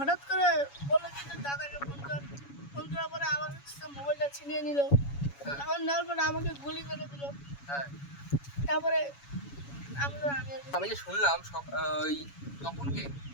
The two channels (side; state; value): right; late; 7.1 ms